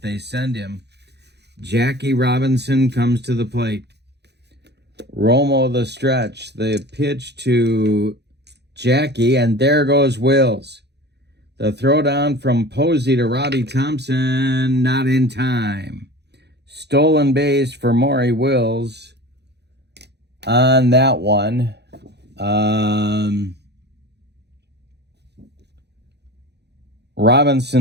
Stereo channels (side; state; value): left; late; 0.49 ms